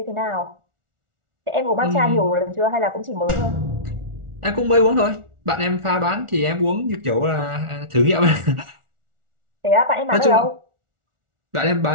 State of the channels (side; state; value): left; late; 1.4 ms